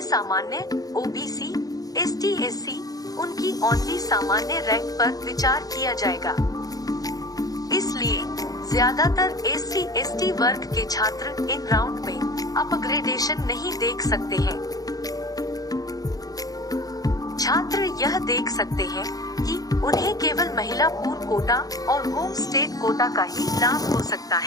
सामान्य, ओबीसी, एसटी, एससी, उनकी ओनली सामान्य रैंक पर विचार किया जाएगा। इसलिए ज्यादातर एससी, एसटी वर्ग के छात्र इन राउंड में अपग्रेडेशन नहीं देख सकते हैं। छात्र यह देख सकते हैं कि उन्हें केवल महिला पूल कोटा और होम स्टेट कोटा का ही लाभ हो सकता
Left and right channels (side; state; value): right; late; 0.18 ms